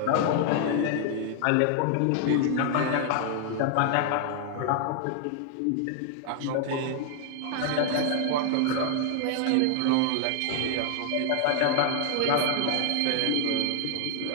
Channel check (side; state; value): both; different; correlation 0.00